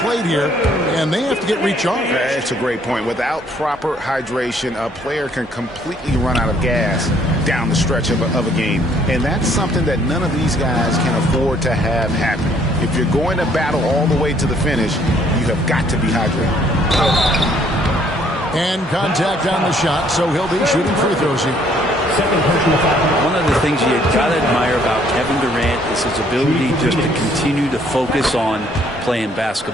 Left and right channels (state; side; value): normal; both; correlation 0.64